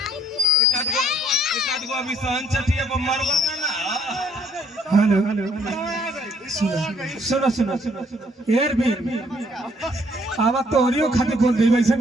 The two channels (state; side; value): normal; both; correlation 0.65